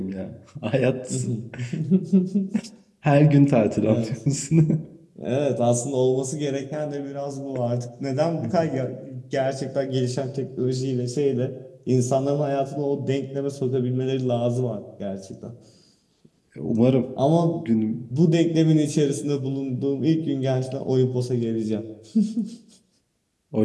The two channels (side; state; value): both; identical; correlation 1.00